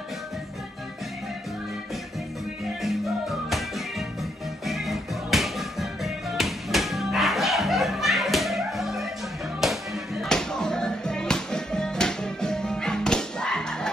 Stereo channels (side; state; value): both; normal; correlation 0.76